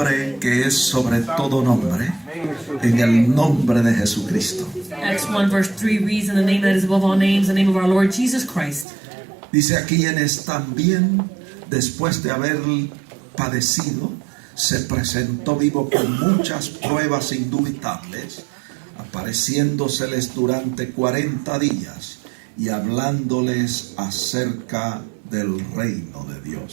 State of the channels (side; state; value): left; drops out; at 8.8 s